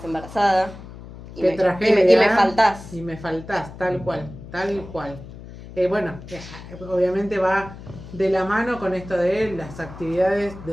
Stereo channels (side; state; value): left; noise; hum, 15 dB below the sound